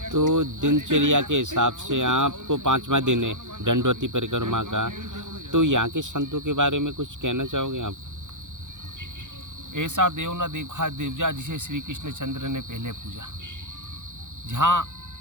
तो दिनचर्या के हिसाब से आपको 5वां दिन है दंडवती परिक्रमा का, तो यहाँ के संतों के बारे में कुछ कहना चाहोगे आप? ऐसा देव न देखा दिव्या जिसे श्री कृष्ण चंद्र ने पहले पूजा। जहाँ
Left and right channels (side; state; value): left; late; 0.86 ms